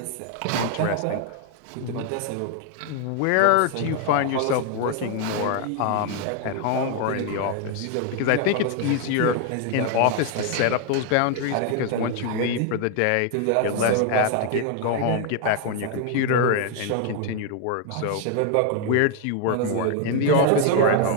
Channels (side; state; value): both; different; correlation 0.00